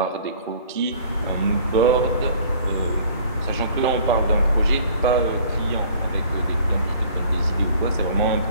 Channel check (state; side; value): inverted; both; correlation -0.51